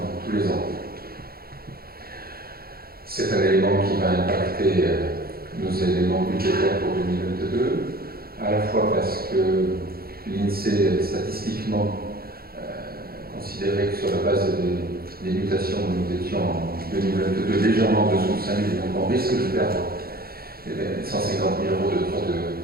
tous les ans. C'est un élément qui va impacter nos éléments budgétaires pour 2022, à la fois parce que l'INSEE statistiquement considérait que sur la base des mutations, nous étions en 2022 légèrement en dessous de 5 000, donc on risque de perdre 150 000 euros de droits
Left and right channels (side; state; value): left; late; 0.44 ms